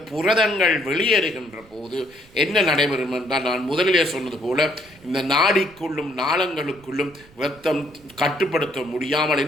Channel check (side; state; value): right; noise; rumble, 25 dB below the sound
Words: புரதங்கள் வெளியேறுகின்ற போது என்ன நடைபெறும் என்றால், நான் முதலிலே சொன்னது போல இந்த நாடிக்குள்ளும் நாளங்களுக்குள்ளும் இரத்தம் கட்டுப்படுத்த முடியாமல்